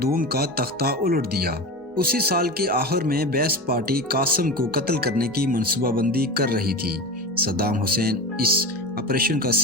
دوم کا تختہ الٹ دیا۔ اسی سال کے آخر میں بیس پارٹی قاسم کو قتل کرنے کی منصوبہ بندی کر رہی تھی۔ صدام حسین اس آپریشن کا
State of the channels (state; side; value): normal; both; correlation 0.27